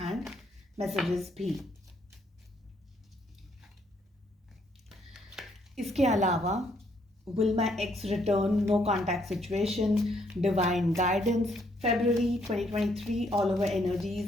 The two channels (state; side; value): normal; both; correlation 0.70